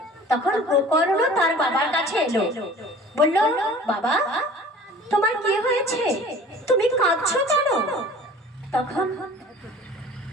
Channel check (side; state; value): both; normal; correlation 0.45